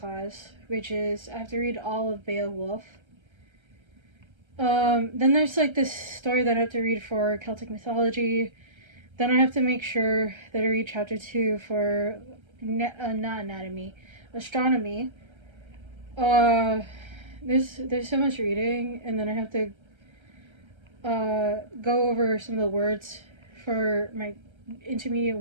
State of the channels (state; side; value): late; left; 1.3 ms